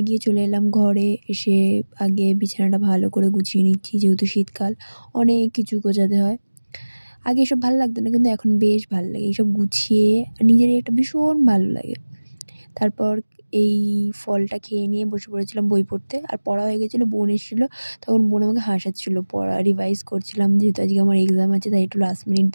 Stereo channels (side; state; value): both; inverted; correlation -1.00